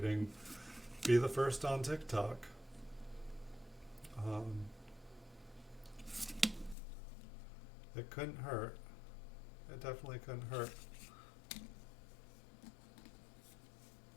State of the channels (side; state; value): right; drops out; at 6.8 s